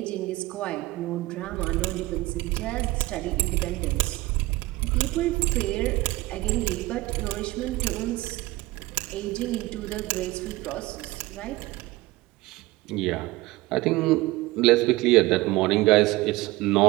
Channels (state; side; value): quieter; left; 19.7 dB